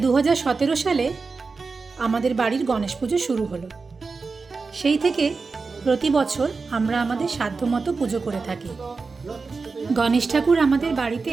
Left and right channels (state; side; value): quieter; left; 4.4 dB